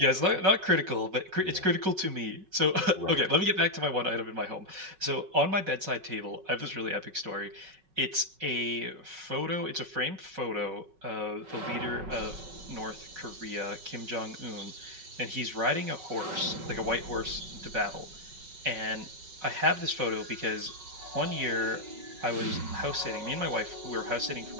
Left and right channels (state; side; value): late; left; 5.4 ms